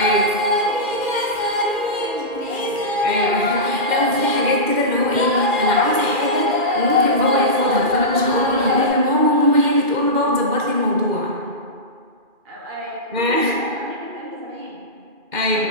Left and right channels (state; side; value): late; left; 2.4 ms